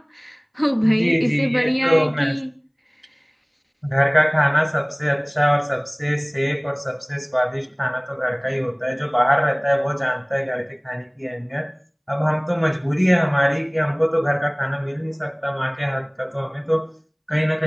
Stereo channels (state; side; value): identical; both; correlation 1.00